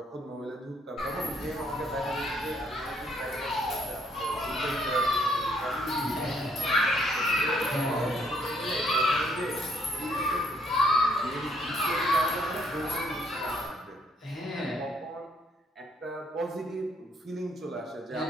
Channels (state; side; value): normal; both; correlation 0.69